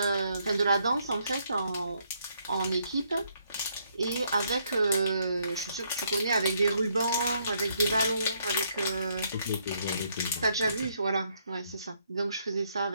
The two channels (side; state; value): both; inverted; correlation -0.72